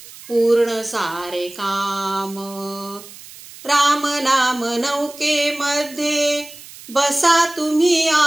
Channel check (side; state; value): right; noise; hiss, 18 dB below the sound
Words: पूर्ण सारे काम। राम नाम नौकेमध्ये बसा तुम्ही